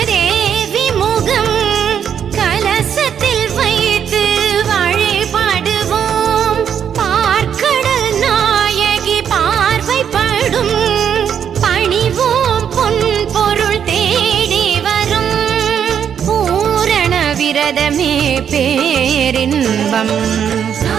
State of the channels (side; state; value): left; quieter; 8.3 dB